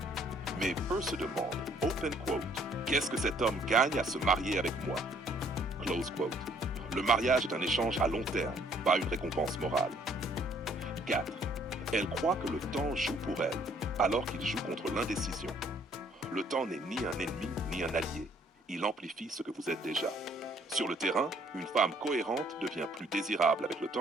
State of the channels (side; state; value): both; normal; correlation 0.63